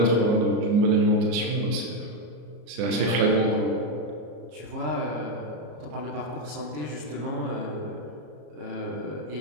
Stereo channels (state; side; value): late; left; 34 ms